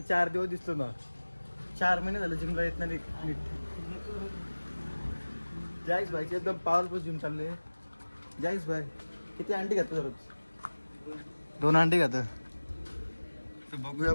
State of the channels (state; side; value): inverted; both; correlation -1.00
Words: 4 दिवस दिसतो ना 4 महिने झाले जिमला येत नाही नीट जॅक्स भाईची एकदम पॉवरफुल जिम चालले जॅक्स भाई किती अंडी खातो दररोज 2 अंडी खातो तर बघूया